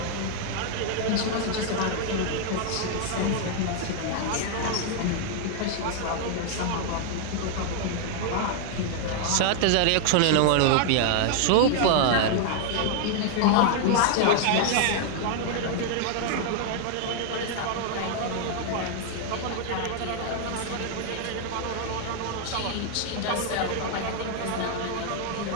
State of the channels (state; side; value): different; both; correlation 0.00